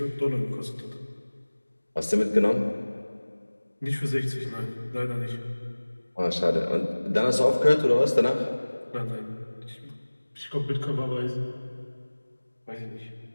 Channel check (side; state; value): both; inverted; correlation -1.00